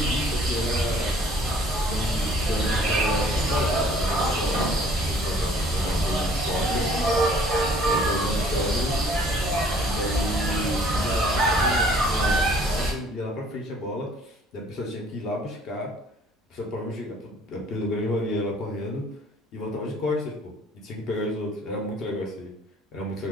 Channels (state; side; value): normal; both; correlation 0.56